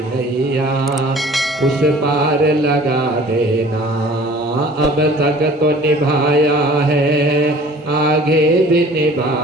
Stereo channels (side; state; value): both; normal; correlation 0.49